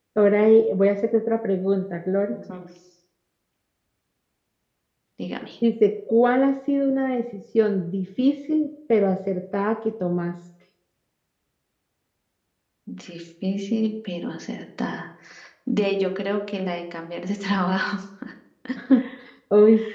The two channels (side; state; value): both; identical; correlation 1.00